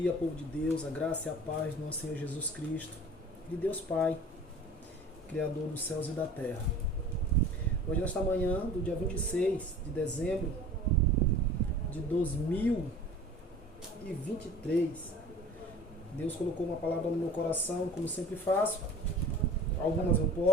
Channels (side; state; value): both; normal; correlation 0.43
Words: povo de Deus, a graça e a paz do nosso Senhor Jesus Cristo, de Deus Pai, Criador dos céus e da terra. Hoje, nesta manhã do dia 26 de dezembro de 2023, Deus colocou uma palavra no meu coração, como sempre faço. Algumas eu